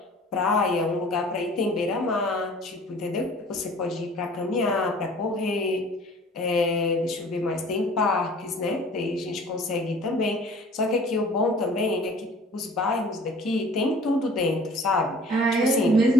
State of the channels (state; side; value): normal; both; correlation 0.49